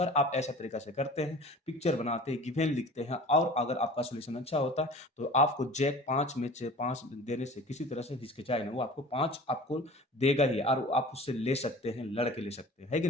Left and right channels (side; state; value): both; normal; correlation 0.41